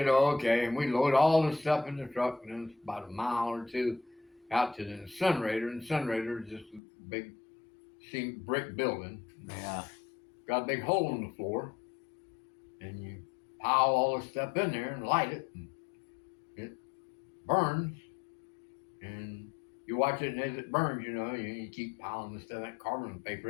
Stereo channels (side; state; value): right; drops out; at 6.8 s